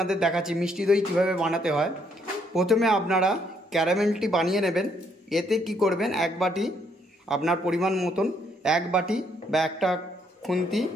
দেখাচ্ছি মিষ্টি দই কীভাবে বানাতে হয়। প্রথমে আপনারা ক্যারামেলটি বানিয়ে নেবেন। এতে কি করবেন, এক বাটি আপনার পরিমাণ মতন এক বাটি বা একটা খুন্তি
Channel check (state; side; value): normal; both; correlation 0.71